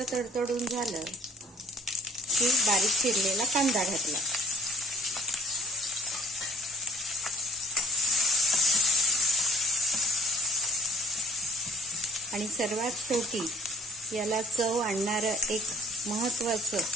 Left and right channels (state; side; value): normal; both; correlation 0.57